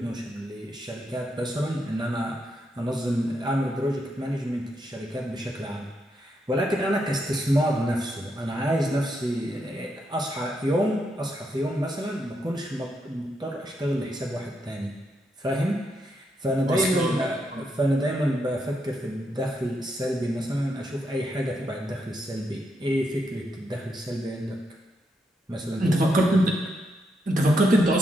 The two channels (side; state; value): both; normal; correlation 0.80